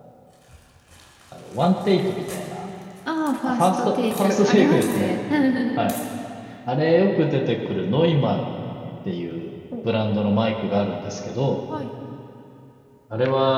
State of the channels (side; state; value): both; identical; correlation 1.00